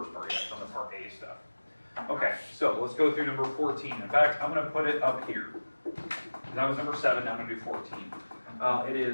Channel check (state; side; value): inverted; both; correlation -1.00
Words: part, yeah. It's on the part A stuff. Okay, so let's go through number 14. In fact, I'm going to put it up here. That was number 7, now I'm going to do 14. It